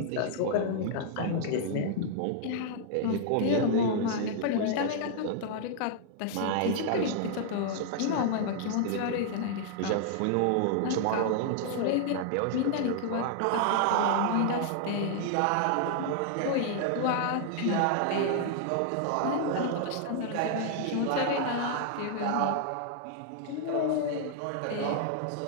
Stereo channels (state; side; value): different; both; correlation -0.01